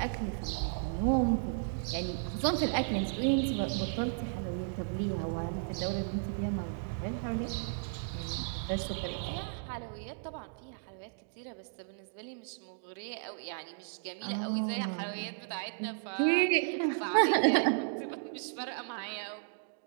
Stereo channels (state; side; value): silent; left; digital silence